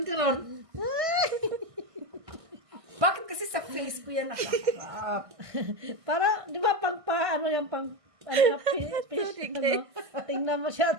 ka ron. Bakit kasi sa face ko yan nakaharap? Para, di ba, ano yung ano na, fish, ano? Tingnan mo siya,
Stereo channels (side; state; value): left; late; 1.6 ms